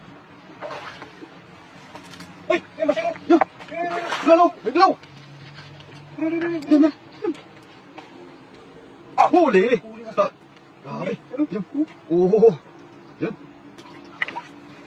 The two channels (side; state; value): both; identical; correlation 1.00